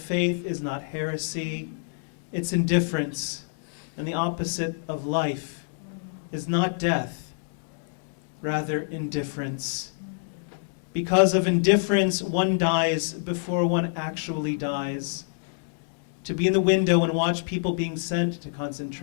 is not heresy, it's indifference. And the opposite of life is not death, rather indifference. Because of indifference, one dies before one actually dies. To be in the window and watch people being sent to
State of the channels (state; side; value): silent; right; digital silence